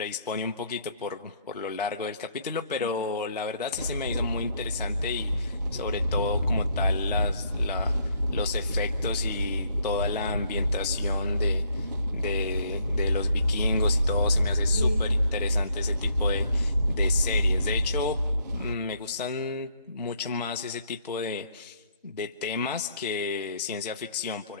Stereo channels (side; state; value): both; inverted; correlation -0.68